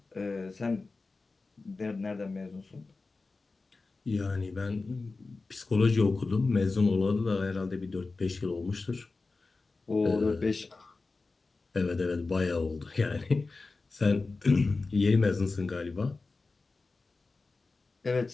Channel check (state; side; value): quieter; right; 3.8 dB